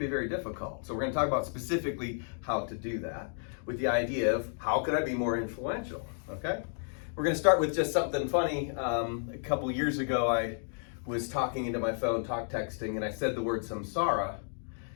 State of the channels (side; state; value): right; silent; digital silence